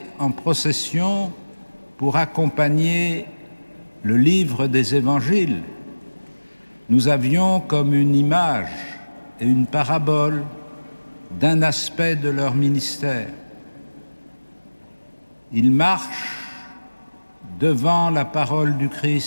en procession pour accompagner le livre des évangiles, nous avions comme une image et une parabole d'un aspect de leur ministère. Ils marchent devant la parole du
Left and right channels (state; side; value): inverted; both; correlation -1.00